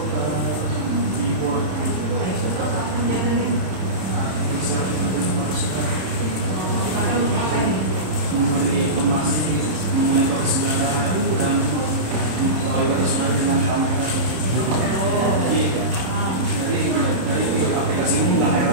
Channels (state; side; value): late; left; 27 ms